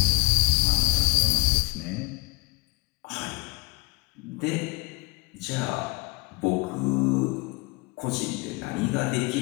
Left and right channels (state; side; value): quieter; right; 27.2 dB